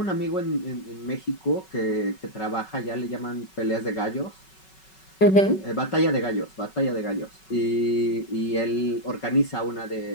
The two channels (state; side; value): late; right; 5.3 ms